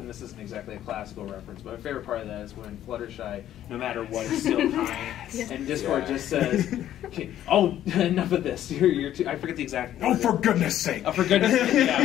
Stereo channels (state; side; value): quieter; right; 11.9 dB